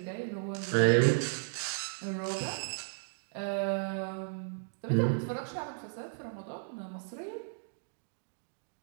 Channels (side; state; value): left; silent; digital silence